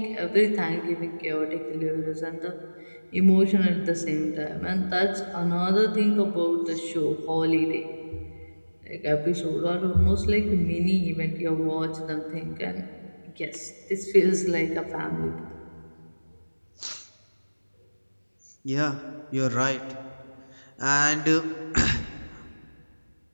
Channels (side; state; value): both; inverted; correlation -1.00